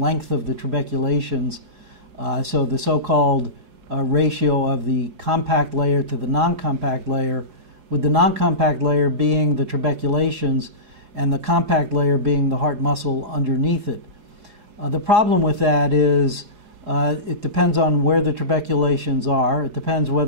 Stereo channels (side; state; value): left; late; 4.8 ms